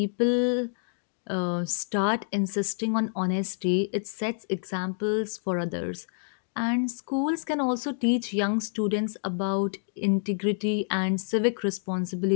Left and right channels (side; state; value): right; silent; digital silence